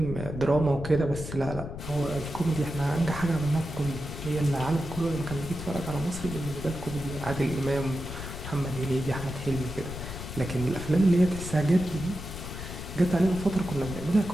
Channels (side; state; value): left; noise; rumble, 9 dB below the sound